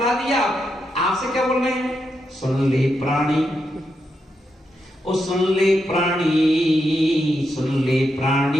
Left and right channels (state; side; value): normal; both; correlation 0.84